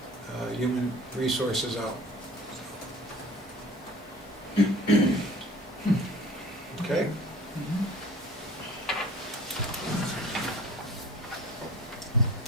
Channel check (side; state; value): both; normal; correlation 0.45